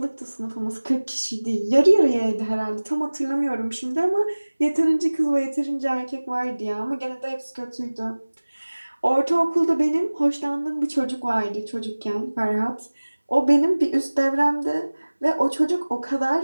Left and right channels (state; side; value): inverted; both; correlation -1.00